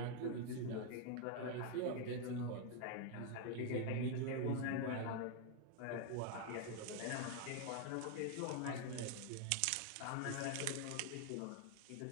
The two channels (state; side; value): different; both; correlation 0.00